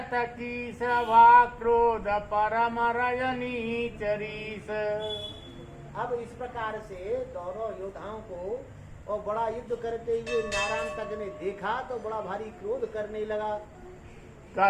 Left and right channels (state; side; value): identical; both; correlation 1.00